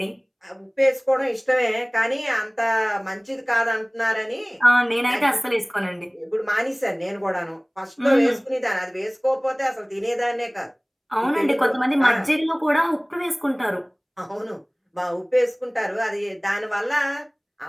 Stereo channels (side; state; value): both; identical; correlation 1.00